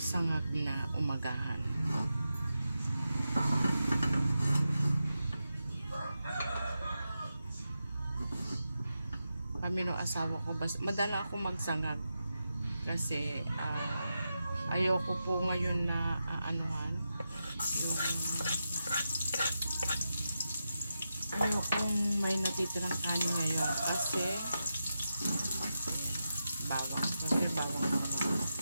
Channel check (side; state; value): both; inverted; correlation -0.89